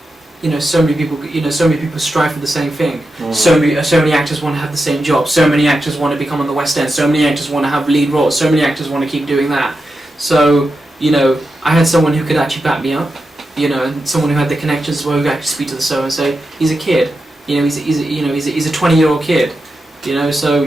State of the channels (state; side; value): normal; both; correlation 0.89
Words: many people strive for the same thing. So many actors want to have the same job. So many actors want to become on the West End. So many actors want to have lead roles. So many actors want to keep doing that. So I had someone who could actually back me up. And someone who had the connections as well, who could actually speak to the show and say, he's a kid. He's a 20-year-old kid. So